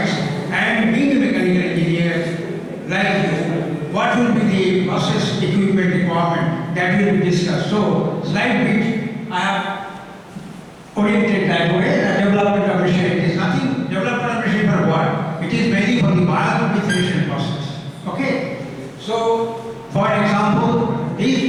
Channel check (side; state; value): both; identical; correlation 1.00